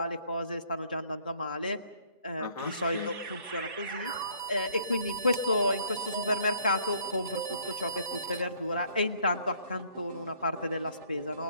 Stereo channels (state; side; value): inverted; both; correlation -0.61